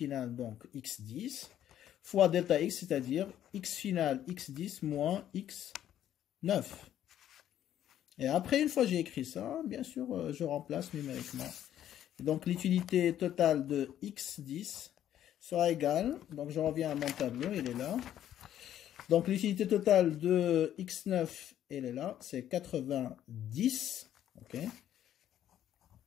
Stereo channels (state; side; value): quieter; right; 11.2 dB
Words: donc x10, fois delta x, c'est-à-dire x finale x10 moins x9. Et après, une fois que j'ai écrit ça, bien sûr, je remplace numériquement. Et donc, l'utilité totale de x10 sera égale, donc je reviens à mon tableau, il est là. Donc, l'utilité totale de x9, elle est là, c'est 90, ok.